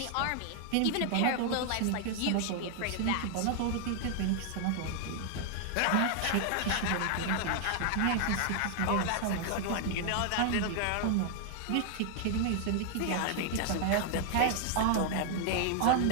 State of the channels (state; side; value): different; both; correlation 0.00